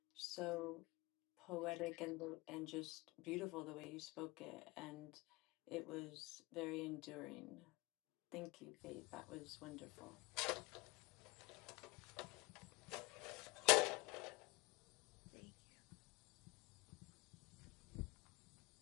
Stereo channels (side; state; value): right; quieter; 24.3 dB